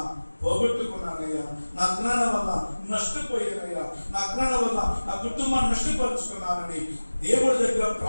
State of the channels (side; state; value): both; inverted; correlation -1.00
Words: పోగొట్టుకున్నానయ్యా, నా అజ్ఞానం వల్ల నష్టపోయానయ్యా, నా అజ్ఞానం వల్ల నా కుటుంబాన్ని నష్టపరుచుకున్నానని దేవుడి దగ్గర